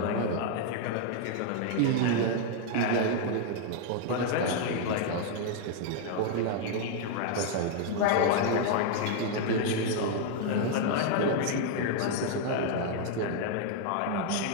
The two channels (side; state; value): both; different; correlation 0.00